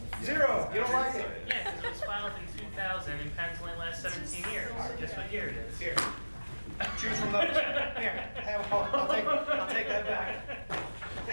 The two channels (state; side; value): inverted; both; correlation -1.00